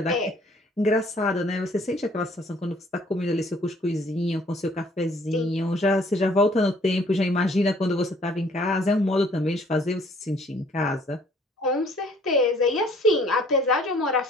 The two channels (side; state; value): both; normal; correlation 0.58